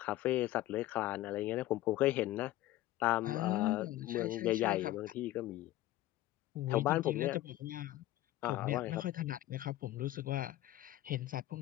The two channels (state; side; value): quieter; right; 15.3 dB